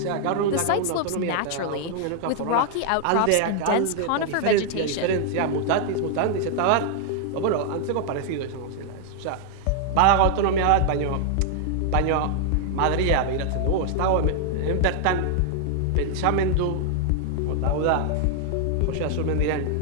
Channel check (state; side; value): different; both; correlation 0.00